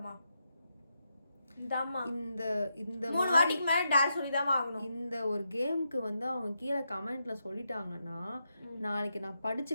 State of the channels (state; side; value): inverted; both; correlation -0.84